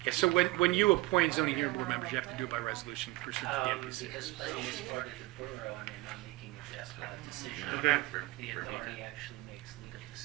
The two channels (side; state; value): left; quieter; 20.7 dB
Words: Yeah, so when you appoint zoning hearing board members, you have to do it by resolution pursuant to the NPC. Because Flynn is part of the borough and they're not making a decision. Okay. The authority actually makes legal